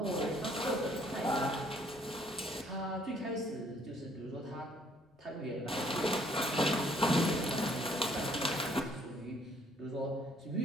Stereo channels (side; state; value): both; normal; correlation 0.63